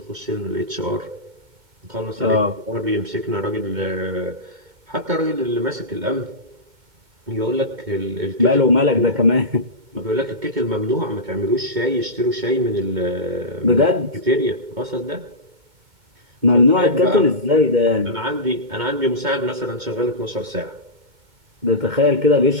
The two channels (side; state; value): left; late; 2.2 ms